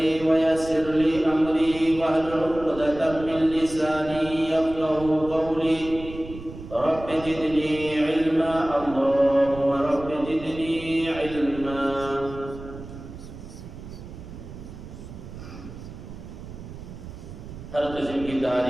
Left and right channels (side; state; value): right; noise; rumble, 13 dB below the sound